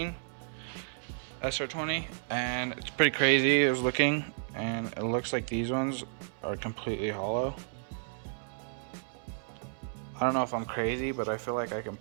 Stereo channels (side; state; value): left; silent; 56 dB below the other